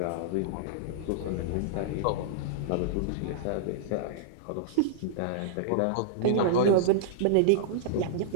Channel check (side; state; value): both; different; correlation -0.02